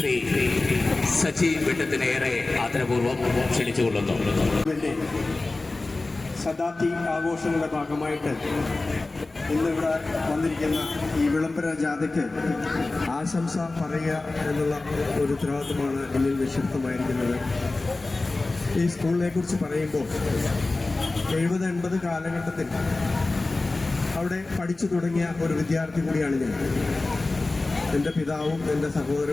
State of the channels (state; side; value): quieter; right; 3.2 dB